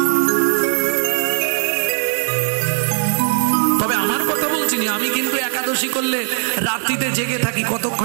তবে আমার কথা বলছি না, আমি কিন্তু একাদশী করলে রাত্রিতে জেগে থাকি,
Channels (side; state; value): left; silent; digital silence